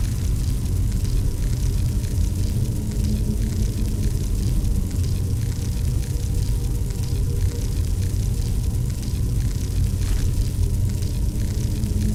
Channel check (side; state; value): both; identical; correlation 1.00